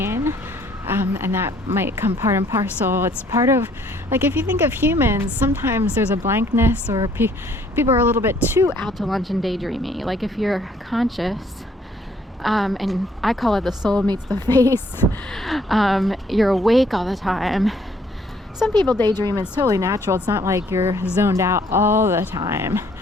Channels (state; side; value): normal; both; correlation 0.63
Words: And that might come part and parcel. It's part of, like, if you think of humans, sometimes there's a blankness, or people are a little bit too out to lunch and daydreamy. Like if you're conscious, and I call it the soul meets the face, you're awake all the time. Some people daydream, it's totally natural. It's not like you're zoned out all the time.